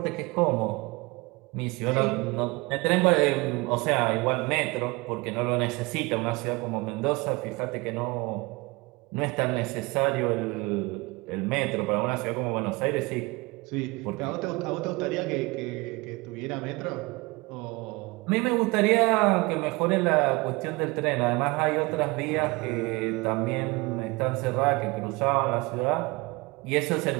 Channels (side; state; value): left; quieter; 25.0 dB